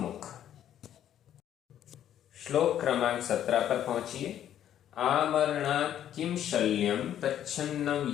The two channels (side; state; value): right; quieter; 10.8 dB